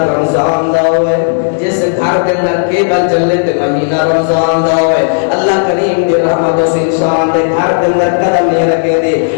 رمضان دا ہوئے, جس گھر دے اندر کیبل چلے تے مہینہ رمضان دا ہوئے, اللہ کریم دی رحمت اس انسان دے گھر دے اندر قدم نہیں رکھے دی.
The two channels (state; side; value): silent; right; digital silence